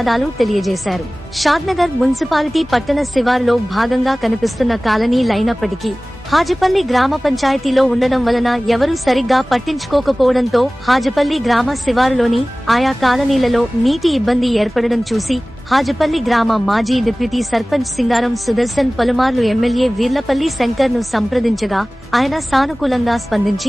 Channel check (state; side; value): normal; both; correlation 0.98